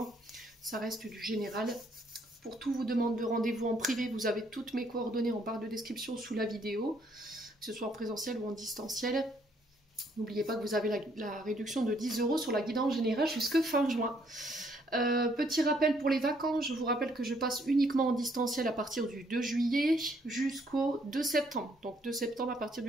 Ça reste du général. Pour tout vous demande de rendez-vous en privé, vous avez toutes mes coordonnées en barre de description sous la vidéo, que ce soit en présentiel ou en distanciel. N'oubliez pas que vous avez la réduction de 10 € sur la guidance générale jusque fin juin. Petit rappel pour les vacances, je vous rappelle que je passe uniquement en distanciel à partir du 2 juillet jusqu'au 2 septembre. Donc 2 septembre, à partir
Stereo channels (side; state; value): both; normal; correlation 0.68